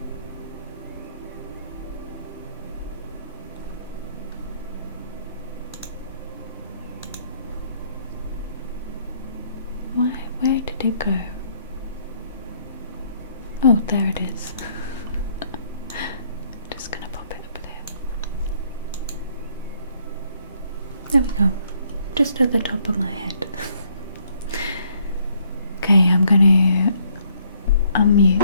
Why? Where did it go? Oh, there it is. Just gonna pop it up there. There we go. Just at the top of my head. Okay, I'm gonna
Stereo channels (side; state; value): both; inverted; correlation -0.67